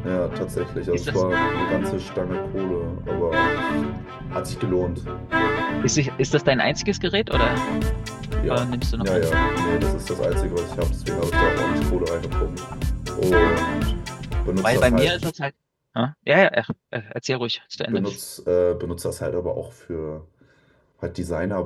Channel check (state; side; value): identical; both; correlation 1.00